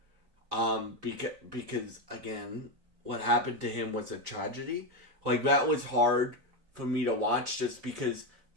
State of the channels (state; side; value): late; left; 3.9 ms